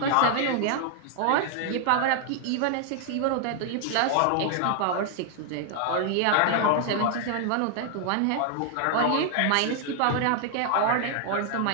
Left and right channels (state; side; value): different; both; correlation 0.00